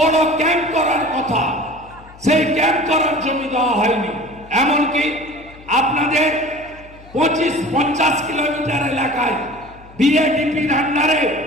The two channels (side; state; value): left; noise; hum, 22 dB below the sound